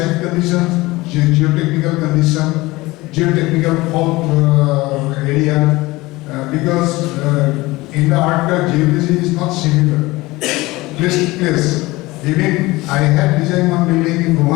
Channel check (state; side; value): quieter; right; 20.6 dB